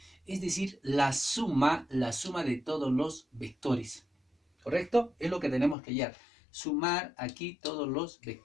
es decir, la suma de todos los vectores. ¿Correcto? Es lo que tenemos que hallar. Sumar aquí todos los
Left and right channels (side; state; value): right; drops out; at 5.8 s